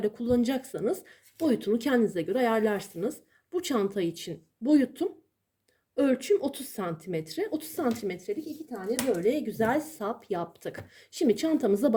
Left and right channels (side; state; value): both; identical; correlation 1.00